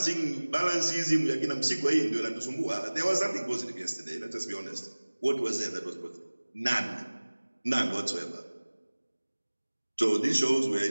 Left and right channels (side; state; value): both; inverted; correlation -1.00